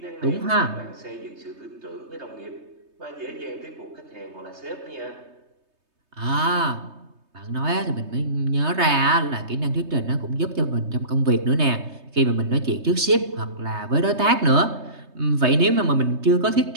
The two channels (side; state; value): left; late; 3.2 ms